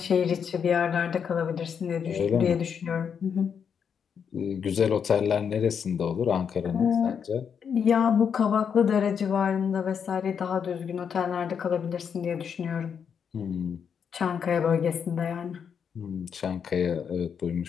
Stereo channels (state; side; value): quieter; right; 7.2 dB